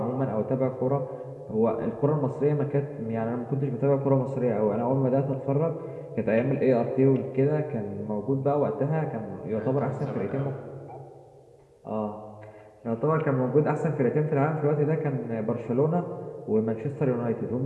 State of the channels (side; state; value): both; identical; correlation 1.00